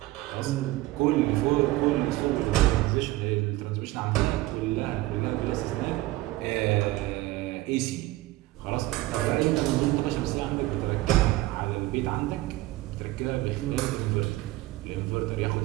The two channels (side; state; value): left; quieter; 18.1 dB